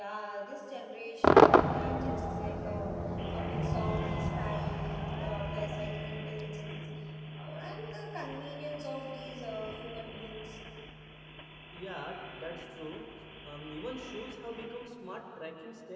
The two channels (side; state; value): both; identical; correlation 1.00